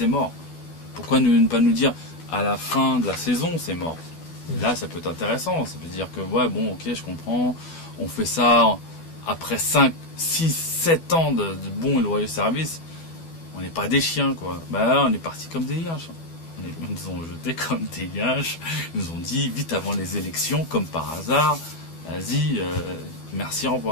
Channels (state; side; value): late; right; 12 ms